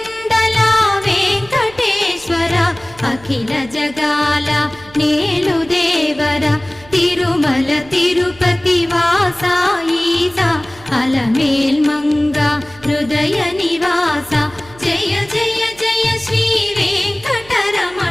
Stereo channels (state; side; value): noise; right; hum, 23 dB below the sound